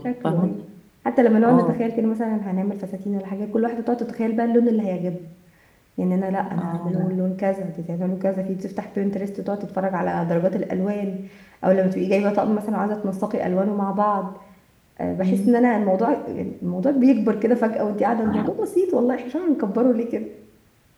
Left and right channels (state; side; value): identical; both; correlation 1.00